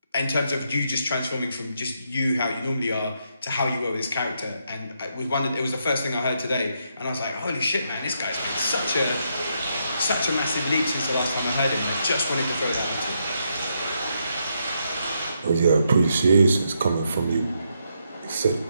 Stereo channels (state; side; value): inverted; both; correlation -0.79